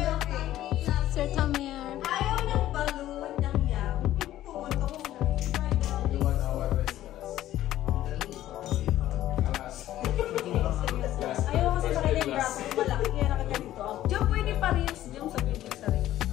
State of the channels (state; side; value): quieter; right; 13.6 dB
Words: Sir Tomer. Ayaw ng balloon ng yam. Pumunta ko na. Ayaw kasi makita yung braso ko malaki. Kaya nakaganito ako. Diyan pwede pa rin yung sa video sa rin.